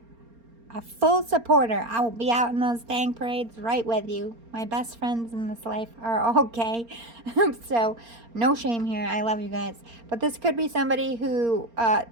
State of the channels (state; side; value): late; left; 4.3 ms